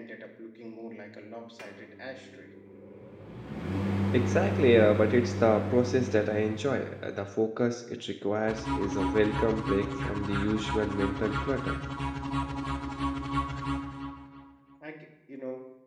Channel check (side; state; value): both; identical; correlation 1.00